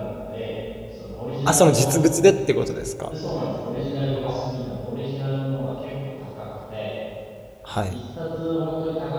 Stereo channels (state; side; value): identical; both; correlation 1.00